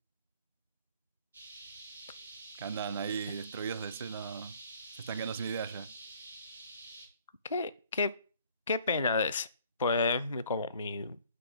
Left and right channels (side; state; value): both; inverted; correlation -0.56